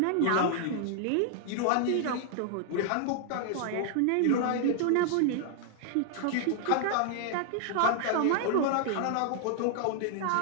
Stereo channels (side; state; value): both; different; correlation 0.00